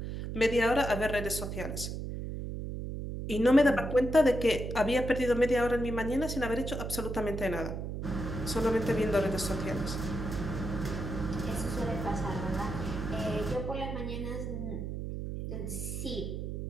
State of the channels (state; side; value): noise; right; hum, 5 dB below the sound